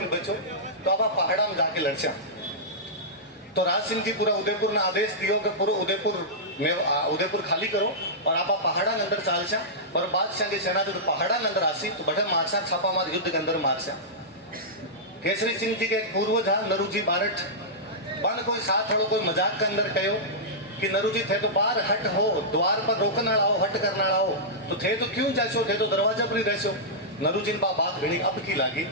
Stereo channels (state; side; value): normal; both; correlation -0.13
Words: बचो तो अब आप पहाड़ा में जाके लड़ जा। तो राज सिंह जी पूरा उदयपुर ने आदेश दियो कि पूरा उदयपुर खाली करो और आप पहाड़ा के अंदर चाल छा और बादशाह की सेना जो पहाड़ा के अंदर आसी तो बड़े मारसा छापामार युद्ध के अंदर मारसा। केसरी सिंह जी के एक पूर्वज है नरूजी बारठ बन कोई साथ हड़ो कोई मजाक के अंदर कहो कि नरूजी थे तो बाहर हट हो द्वार पर रोकन आओ हट करना आओ तो थे तो क्यों जासो थे तो दरवाजा पर ही रहसो। नरूजी ने बात घनी अब की लागी